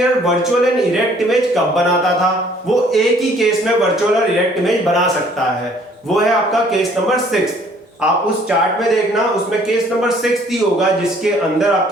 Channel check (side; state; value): both; normal; correlation 0.59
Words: virtual and erect image कब बनाता था, वो एक ही केस में वर्चुअल और इरेक्ट इमेज बना सकता है, वो है आपका केस नंबर 6। आप उस चार्ट में देखना, उसमें केस नंबर 6 ही होगा जिसके अंदर